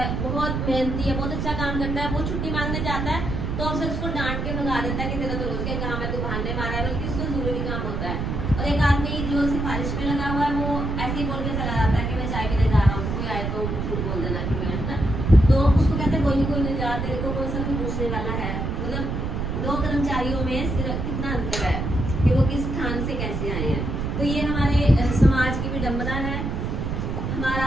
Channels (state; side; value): noise; right; rumble, 2 dB below the sound